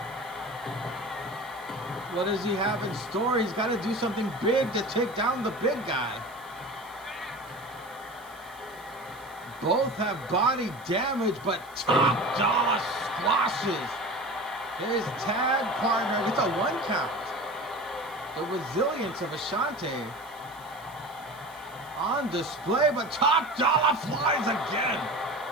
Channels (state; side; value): noise; right; hiss, 24 dB below the sound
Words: what does he have in store? He's got to do something big to take down the big guy. Both have body damage, but Top Dollar squashes his tag partner with a 1 count. The resilience of Ashanti on display, but Top Dollar flies again.